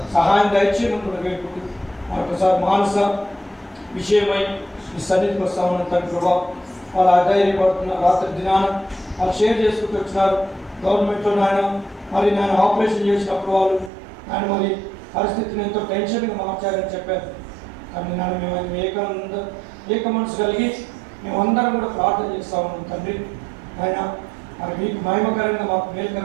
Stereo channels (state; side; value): drops out; left; at 13.9 s